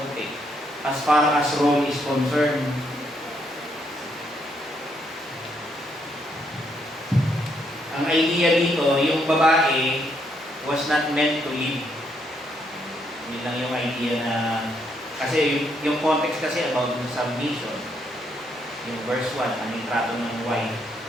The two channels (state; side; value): normal; both; correlation 0.74